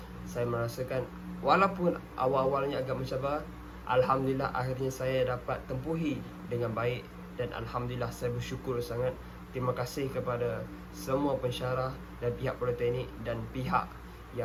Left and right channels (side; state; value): both; identical; correlation 1.00